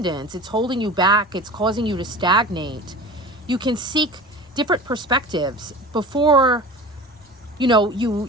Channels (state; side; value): normal; both; correlation 0.36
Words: it's holding you back, it's causing you to stagnate, you can seek different perspectives before